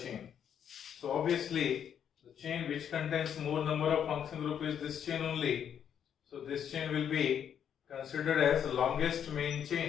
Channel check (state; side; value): quieter; right; 8.7 dB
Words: So obviously the chain which contains more number of functional group is this chain only. So this chain will be considered as the longest main